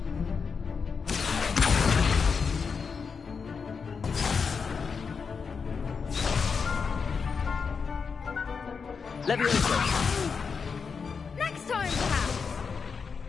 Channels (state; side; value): quieter; right; 5.6 dB